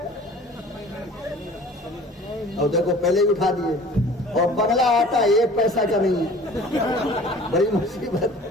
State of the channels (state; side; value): normal; both; correlation 0.46